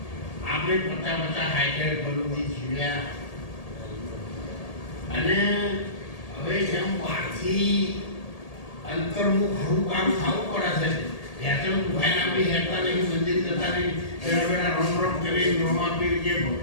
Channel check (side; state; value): right; late; 1.8 ms